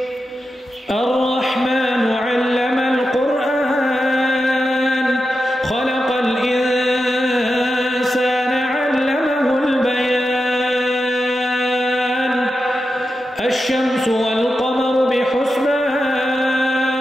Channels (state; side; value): normal; both; correlation 0.89